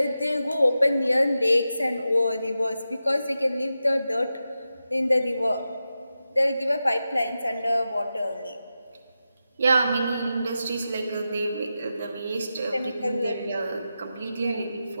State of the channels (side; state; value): both; inverted; correlation -0.91